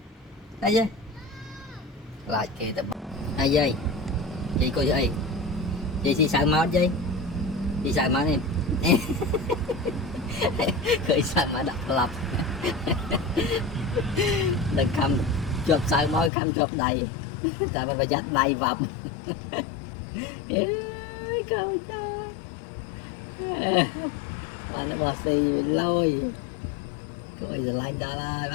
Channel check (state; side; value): drops out; right; at 16.3 s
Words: đây dây lại kì tập đây dây chị coi dây chị sợ máu dây chị sợ máu em khởi sợ mà đập lập đừng cầm chụp sợ máu cầm chụp đầy tại mình phải dắt đầy vòng coi bạn nó bò xì lôi coi giờ lạnh ta lại